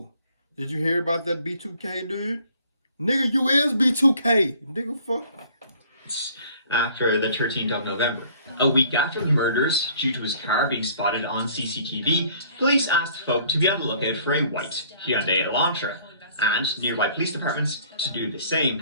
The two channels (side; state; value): both; inverted; correlation -0.56